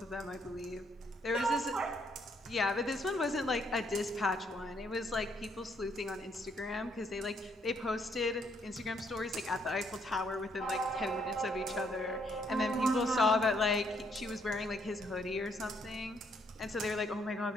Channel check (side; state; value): both; normal; correlation 0.71